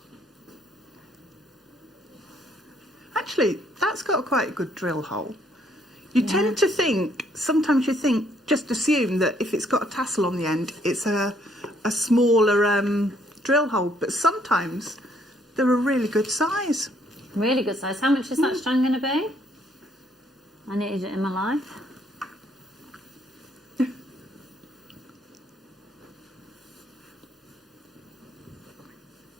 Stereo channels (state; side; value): normal; both; correlation 0.67